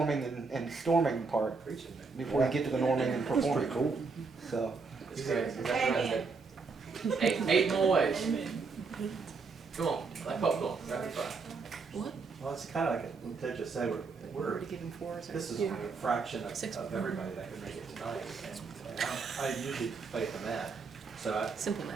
and storming part before you get to the norming and performing. Cool. So. It's great. Eight more ways. Come on, like popcorn, rapid fire. Well, it's kind of like what Ted just said, we're Already given 4. this is a fraction of everybody that could make it tonight. And I usually play at the mat, so Simple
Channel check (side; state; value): left; quieter; 4.6 dB